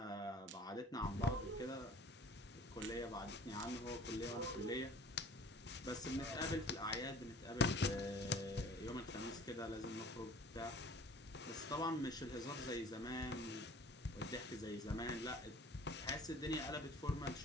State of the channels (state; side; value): normal; both; correlation 0.49